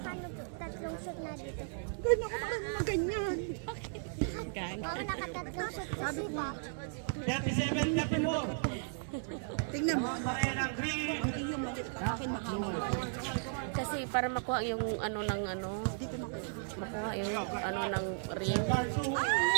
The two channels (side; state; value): left; silent; 54 dB below the other